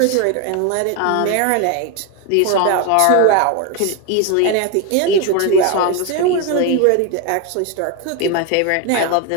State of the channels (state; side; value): different; both; correlation 0.01